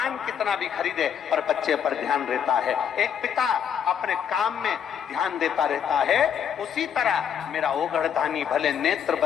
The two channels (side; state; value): right; quieter; 8.3 dB